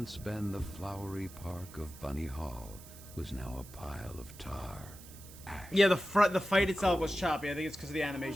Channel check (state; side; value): noise; right; hiss, 18 dB below the sound